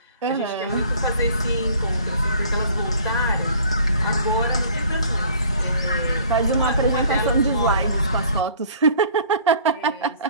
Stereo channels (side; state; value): both; inverted; correlation -0.53